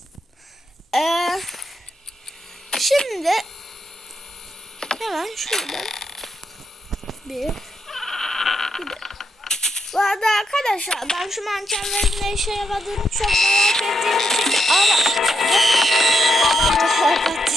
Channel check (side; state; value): both; normal; correlation 0.81